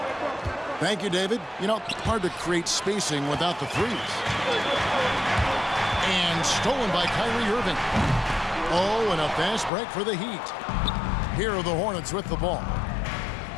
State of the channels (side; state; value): right; drops out; at 9.7 s